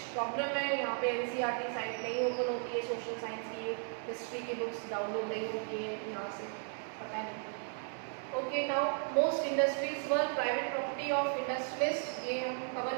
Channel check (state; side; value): silent; left; 54 dB below the other